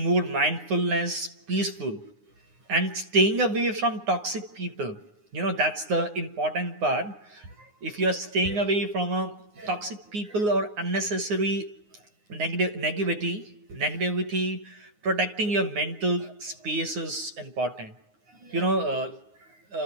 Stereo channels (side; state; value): left; late; 9.6 ms